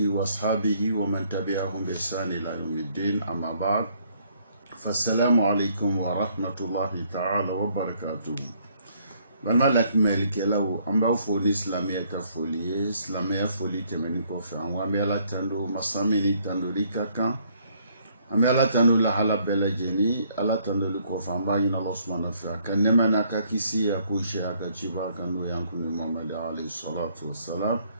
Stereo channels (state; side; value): inverted; both; correlation -0.66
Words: وأصحابه ومن تبعهم بإحسان إلى يوم الدين. أما بعد، فالسلام عليكم ورحمة الله تعالى وبركاته. Vraiment la melke la o amba foli islamia ka foli islamia foli temeni ko fa wa mela tando masamini tando rikaka amela tando la hala bela jeni ala tando ko fa amba ina Allah subhanahu wa ta'ala kan nema na ka kisi ya kuisha ka chiba kanu yanku ni Muhammad alayhi salatu wassalam